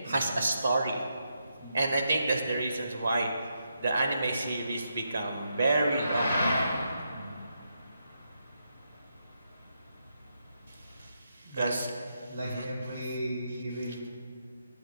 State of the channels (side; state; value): both; inverted; correlation -0.82